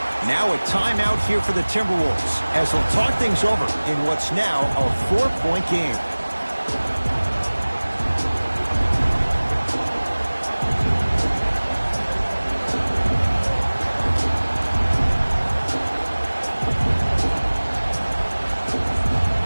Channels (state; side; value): inverted; both; correlation -1.00